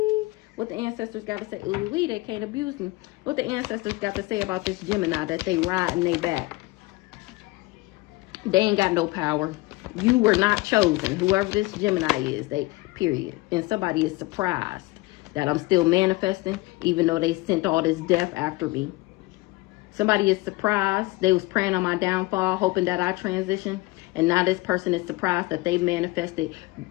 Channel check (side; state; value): right; quieter; 21.7 dB